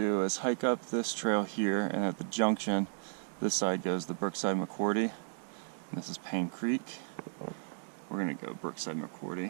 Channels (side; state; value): left; silent; digital silence